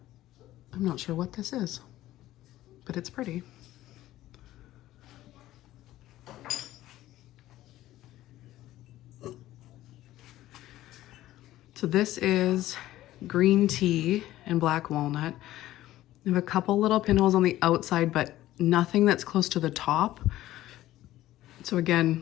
not sure what this is, but it's pretty. So this is green tea and black walnut. I have a couple little pinholes on the outside, but nothing that's close to the top. So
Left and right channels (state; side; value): quieter; right; 14.9 dB